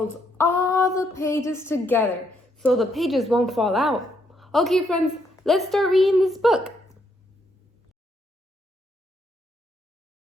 all the pages together so the pages won't fall out. Okay, friends, let's start reading this book.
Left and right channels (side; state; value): both; normal; correlation 0.75